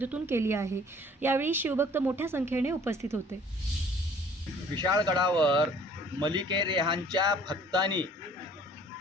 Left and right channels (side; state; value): both; normal; correlation 0.54